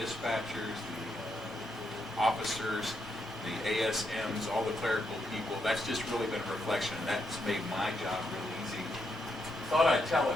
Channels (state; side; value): normal; both; correlation 0.80